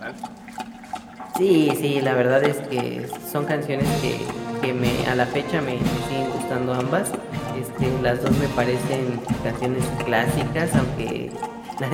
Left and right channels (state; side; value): identical; both; correlation 1.00